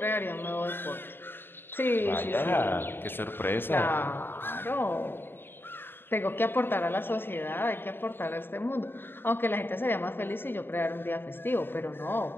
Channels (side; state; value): right; late; 0.10 ms